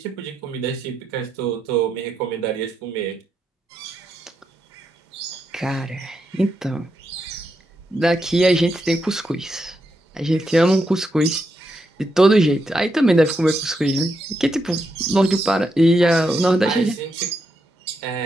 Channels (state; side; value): normal; both; correlation 0.82